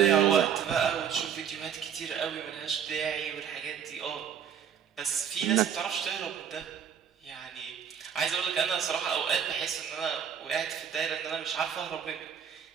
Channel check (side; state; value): left; quieter; 8.1 dB